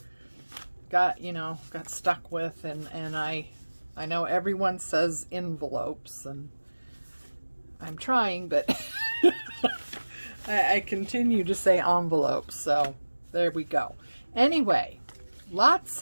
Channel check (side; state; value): both; inverted; correlation -1.00